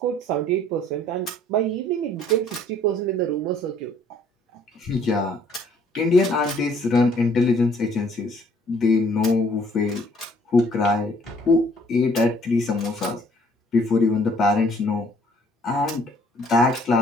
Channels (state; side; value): normal; both; correlation 0.61